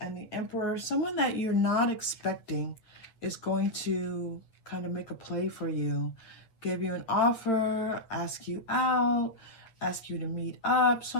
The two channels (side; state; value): right; late; 8.8 ms